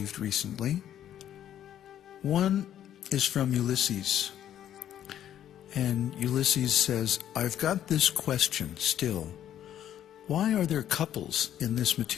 recently. One is from Ulysses, and Ulysses says, I've got this question still. Why are there couples in this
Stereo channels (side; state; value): right; quieter; 10.9 dB